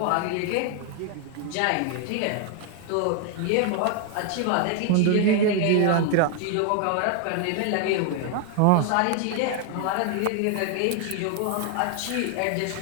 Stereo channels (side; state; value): both; different; correlation 0.00